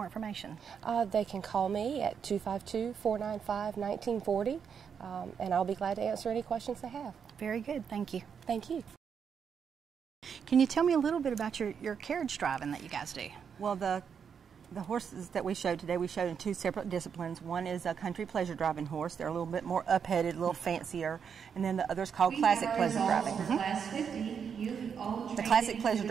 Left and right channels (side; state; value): left; quieter; 7.0 dB